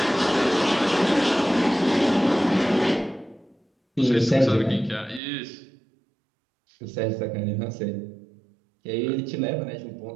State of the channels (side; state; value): left; drops out; at 5.2 s